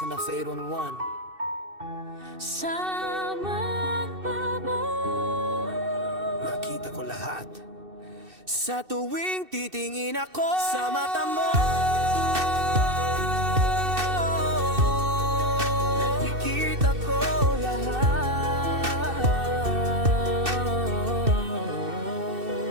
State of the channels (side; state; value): left; late; 2.6 ms